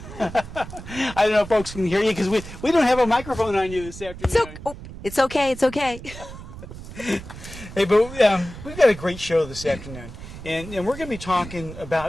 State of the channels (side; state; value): right; noise; rumble, 13 dB below the sound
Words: I don't know if folks can hear you because we don't have a microphone on you this afternoon. It's okay. It's okay. Hey, but we've got a great show this afternoon, and we're going to be talking